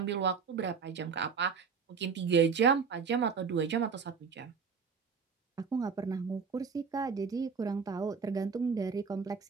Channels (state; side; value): quieter; left; 5.8 dB